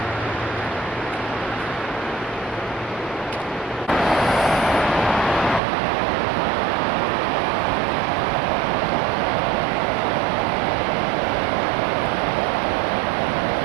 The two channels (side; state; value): left; drops out; at 5.6 s